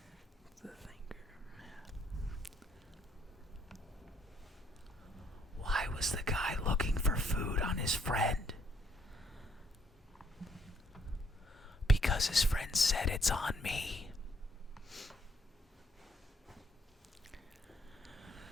The thinker. Why was the guy looking for food on his friend? Because his friend said it's on me.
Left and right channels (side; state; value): both; normal; correlation 0.69